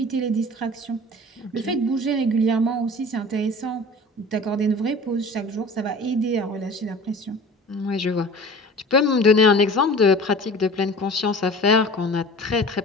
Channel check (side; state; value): both; normal; correlation 0.41